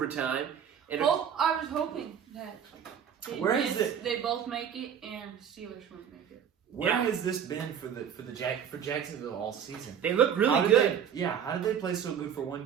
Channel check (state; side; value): quieter; left; 8.3 dB